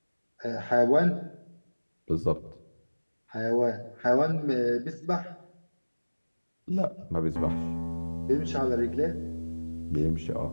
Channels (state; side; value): inverted; both; correlation -1.00